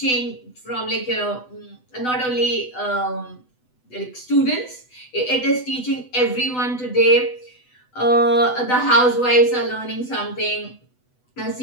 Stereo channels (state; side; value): late; right; 8.0 ms